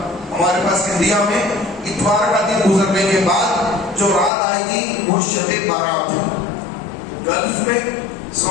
ہمارے پاس انڈیا میں اتوار کا دن گزرنے کے بعد جو رات آئے گی وہ شب بارات ہے. گلف میں،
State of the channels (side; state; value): right; drops out; at 4.3 s